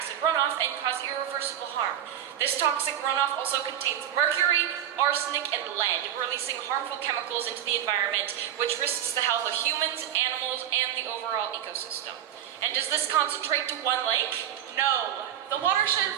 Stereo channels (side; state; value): left; quieter; 10.5 dB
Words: runoff and cause irreversible harm. This toxic runoff also contains mercury, arsenic, and lead, releasing harmful chemicals into the environment, which risks the health of humans, animals, and the overall ecosystem. And does this concentrate to one lake? No. The watershed